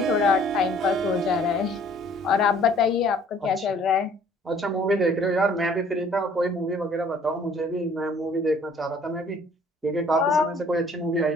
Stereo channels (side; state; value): both; normal; correlation 0.56